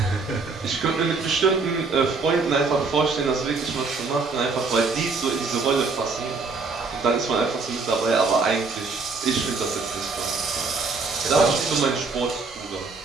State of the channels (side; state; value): left; quieter; 4.2 dB